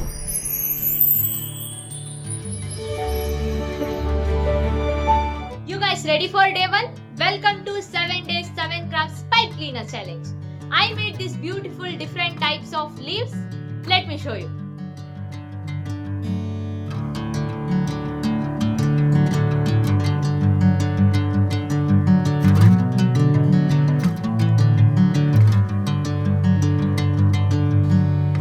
You guys ready for day 1? Welcome to 7 days 7 crafts pipe cleaner challenge. I made these beautiful different types of leaves. Let me show you.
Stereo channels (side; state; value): both; identical; correlation 1.00